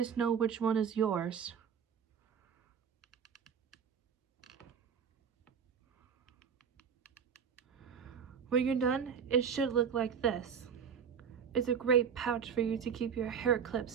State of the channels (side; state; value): left; quieter; 7.2 dB